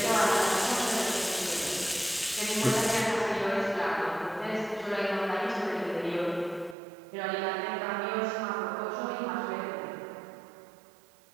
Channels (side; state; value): left; drops out; at 6.8 s